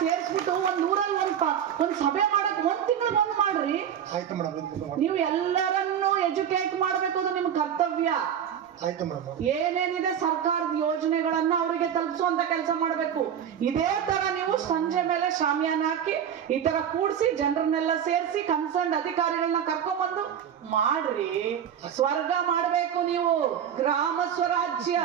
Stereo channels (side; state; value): left; quieter; 8.9 dB